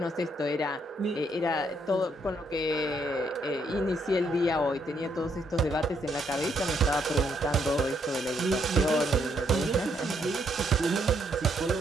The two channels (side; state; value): both; normal; correlation 0.73